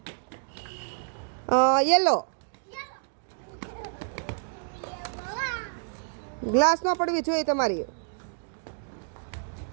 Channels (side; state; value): left; silent; digital silence